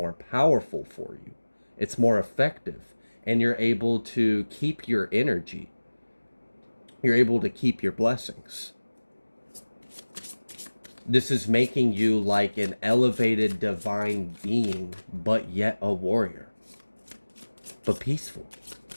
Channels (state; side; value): inverted; both; correlation -1.00